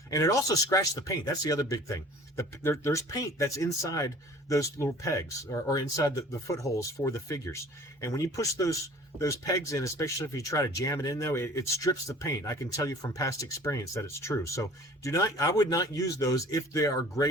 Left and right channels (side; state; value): both; normal; correlation 0.47